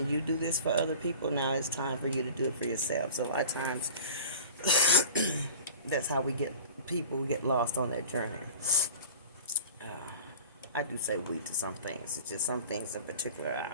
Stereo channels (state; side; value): inverted; both; correlation -0.40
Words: you do this for other people. Now it's time for you to do it for yourself. So a lot of times, that's how people get lost on that journey. Uh, I do say we to some things. It's just some things in particular